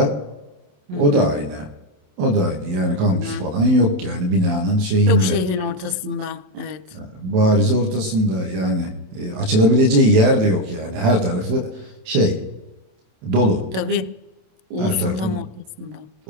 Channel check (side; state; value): left; late; 27 ms